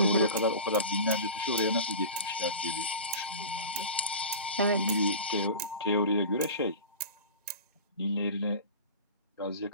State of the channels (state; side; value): inverted; both; correlation -0.34